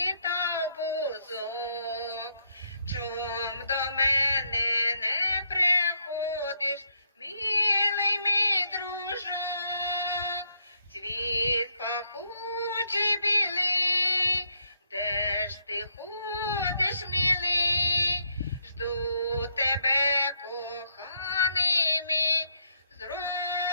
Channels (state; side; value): inverted; both; correlation -0.76